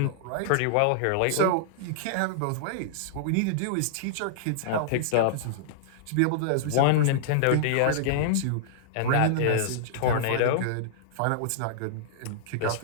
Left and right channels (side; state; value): both; different; correlation -0.02